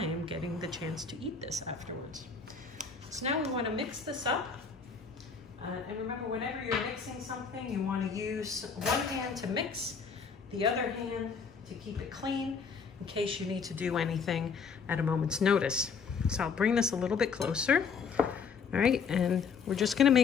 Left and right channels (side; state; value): right; quieter; 5.7 dB